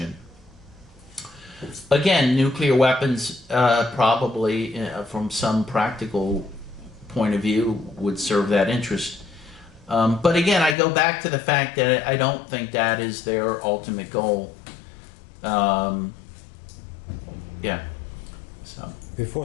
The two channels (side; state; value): right; drops out; at 10.8 s